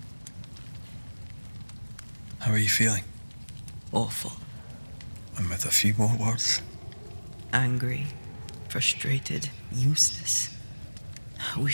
How are you feeling? Awful. And with a few more words? Angry. Frustrated, useless. We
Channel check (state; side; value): inverted; both; correlation -1.00